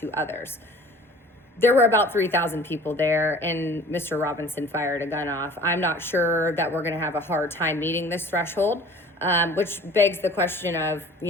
others. There were about 3,000 people there, and Mr. Robinson fired a gun off. I'm not sure that we're going to have a hard time meeting this threshold, which begs the question of,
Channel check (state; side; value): normal; both; correlation 0.47